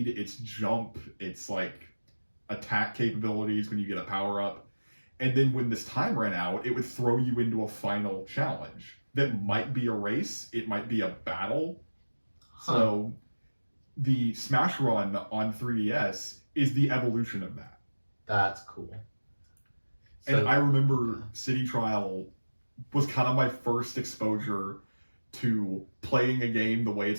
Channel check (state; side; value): inverted; both; correlation -1.00